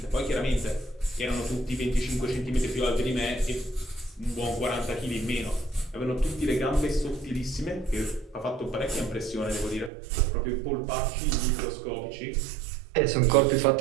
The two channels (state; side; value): drops out; left; at 9.9 s